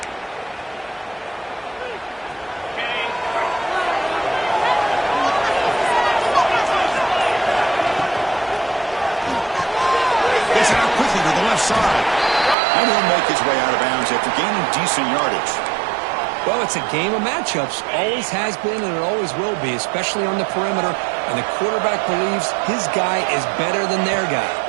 Gets it out quickly to the left side. And he'll make his way out of bounds after gaining decent yardage. Well, it's a game of matchups. Always has been and it always will be, especially on the perimeter. And the quarterback believes his guy is better than their guy.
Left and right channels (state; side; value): drops out; left; at 12.6 s